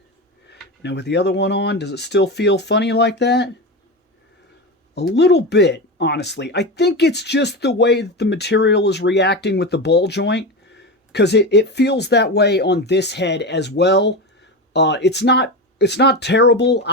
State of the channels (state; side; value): normal; both; correlation 0.21